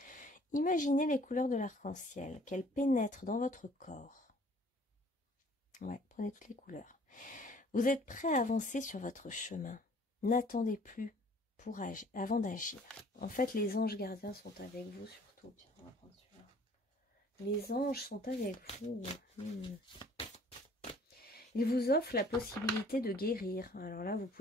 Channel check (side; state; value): both; normal; correlation 0.55